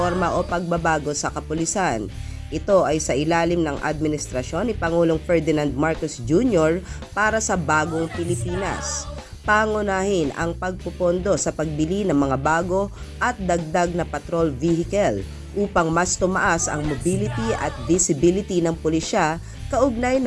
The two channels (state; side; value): identical; both; correlation 1.00